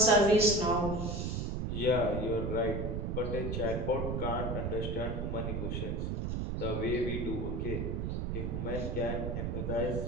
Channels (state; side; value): noise; right; rumble, 2 dB below the sound